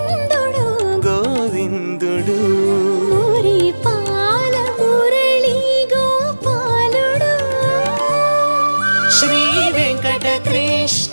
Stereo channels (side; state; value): both; inverted; correlation -1.00